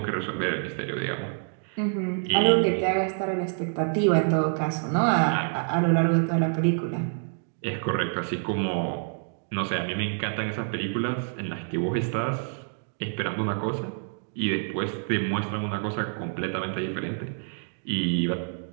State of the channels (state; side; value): silent; left; 60 dB below the other